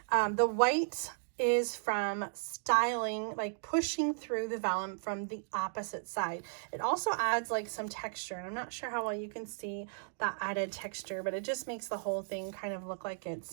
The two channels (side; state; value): left; silent; digital silence